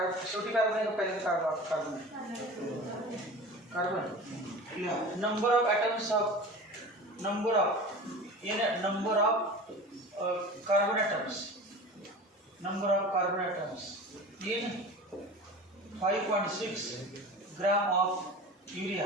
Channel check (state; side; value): normal; both; correlation 0.35